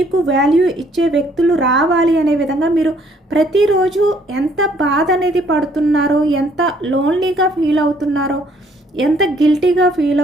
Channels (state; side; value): normal; both; correlation 0.64